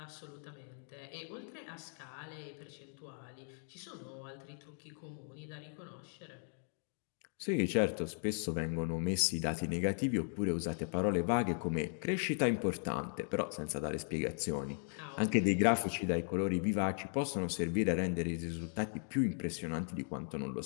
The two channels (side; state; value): right; silent; 53 dB below the other